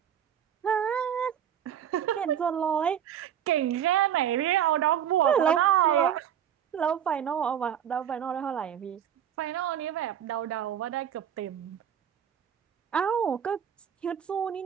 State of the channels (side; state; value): left; quieter; 9.4 dB